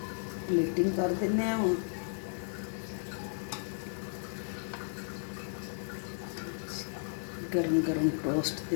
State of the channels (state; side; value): silent; right; digital silence